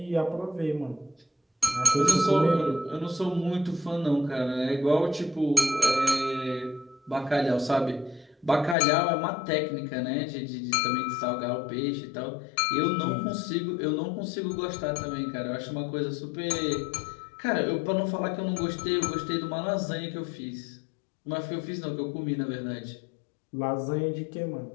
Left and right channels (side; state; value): right; drops out; at 8.8 s